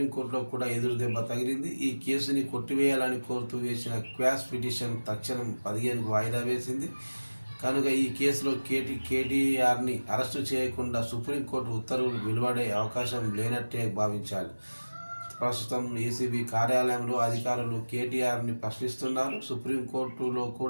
కూడా ఎదురు దెబ్బ తగిలింది. ఈ కేసుని కొట్టివేయాలని కోరుతూ వేసిన క్వాష్ పిటిషన్ తక్షణం 15కు వాయిదా వేసింది. కనుక ఈ కేసులో కేటీఆర్ని అరెస్టు చేయకుండా సుప్రీంకోర్టు ఉత్తర్వులు వెలువడే అవకాశం లేనట్టే భావించాలి. ప్రస్తుతం ఏసీబీ కార్యాలయంలో అధికారులు కేటీఆర్ని ప్రశ్నిస్తున్నారు. సుప్రీంకోర్టులో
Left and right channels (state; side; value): inverted; both; correlation -1.00